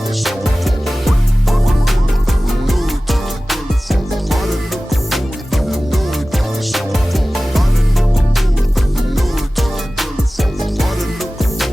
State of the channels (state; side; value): normal; both; correlation 0.97